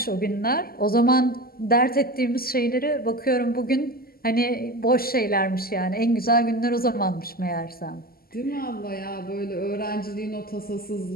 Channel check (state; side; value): late; right; 0.43 ms